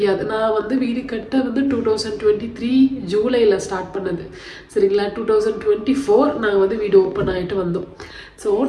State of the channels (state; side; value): identical; both; correlation 1.00